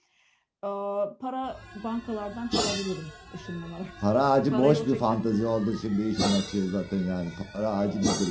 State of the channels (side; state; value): both; identical; correlation 1.00